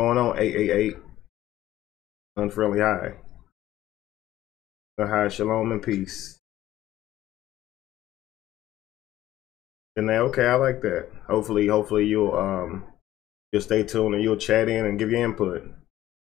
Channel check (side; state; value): right; quieter; 14.2 dB